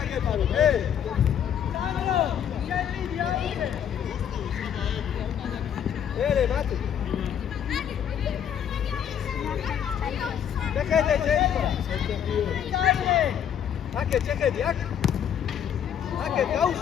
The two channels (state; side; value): quieter; right; 9.0 dB